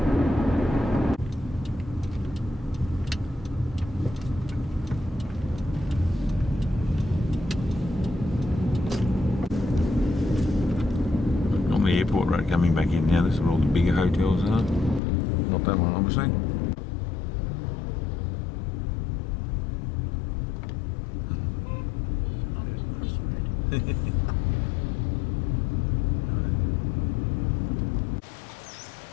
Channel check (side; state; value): right; drops out; at 15.0 s